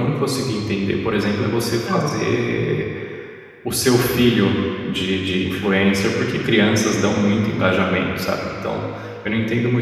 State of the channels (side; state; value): both; identical; correlation 1.00